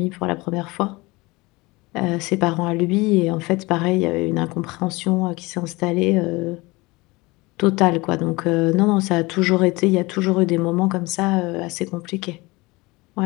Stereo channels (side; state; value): right; quieter; 23.1 dB